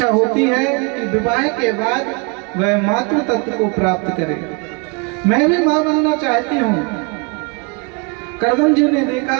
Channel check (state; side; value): quieter; left; 32.2 dB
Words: होती है कि विवाह के बाद वह मातृ तत्व को प्राप्त करे। मैं भी मां बनना चाहती हूँ। करदम जी ने देखा